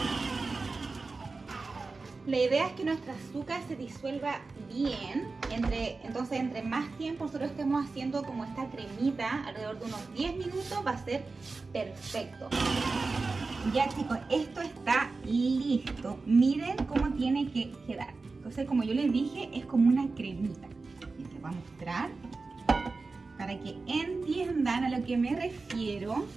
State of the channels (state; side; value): quieter; left; 3.9 dB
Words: La idea es que nuestro azúcar se disuelva bien. Entonces entre más tiempo nosotros estemos haciendo como esta cremita, alrededor de unos 10 minutos, va a ser perfecto. Ya, chicos, esto está listo. Miren cómo tiene que quedar. Entonces, como yo les dije, es como una cremita. Y les voy a mostrar para que entiendan a lo que me refiero.